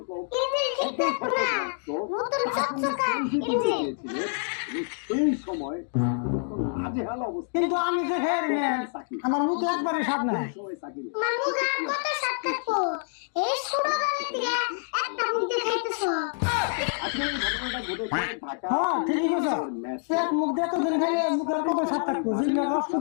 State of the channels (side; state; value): right; silent; digital silence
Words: এই সময় হাজেহাল অবস্থা কিন্তু আমি যে খেয়ে নি আমার মুখ একবারে স্বাদ নাই সময় সাকিব এই ছোটবেলা থেকে একটা মুখ দিয়ে খাইতেছো আসলে ঘটনাটা ঘটেছে ঢাকা হ্যাঁ ঠিক আছে এক মুখ দিয়ে তো দিন খেয়ে মুখের কত স্বাদ থাকবো জিনিস নষ্ট